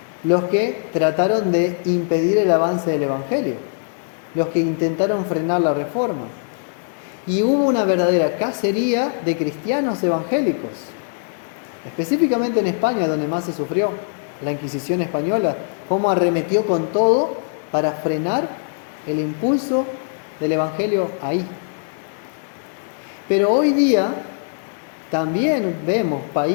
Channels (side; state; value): right; silent; 65 dB below the other